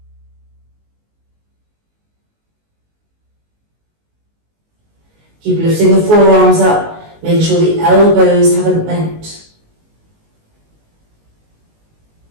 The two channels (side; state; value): left; late; 19 ms